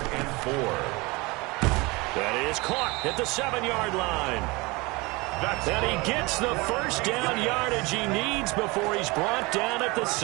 and 4. That is caught at the 7-yard line. And he gets the first down yardage he needs before he's brought down at the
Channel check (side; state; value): left; quieter; 24.6 dB